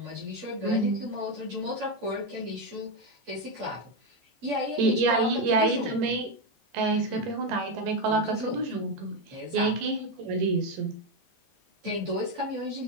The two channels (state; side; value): late; left; 13 ms